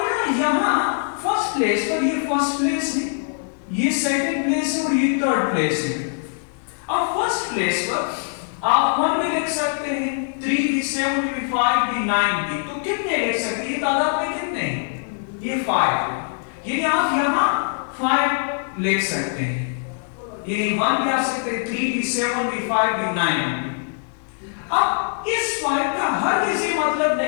यहां फर्स्ट प्लेस पर ये फर्स्ट प्लेस है, ये सेकंड प्लेस है और ये थर्ड प्लेस है। अब फर्स्ट प्लेस पर आप 1 भी लिख सकते हैं, 3 भी 7 भी 5 भी 9 भी, तो कितने लिख सकते हैं, ये तादाद में कितने हैं, ये 5, यानी आप यहां 5 लिख सकते हैं, यानी 1 भी आ सकते हैं, 3 भी 7 भी 5 भी 9 भी। अब इस 5 का हर किसी मतलब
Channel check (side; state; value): right; silent; digital silence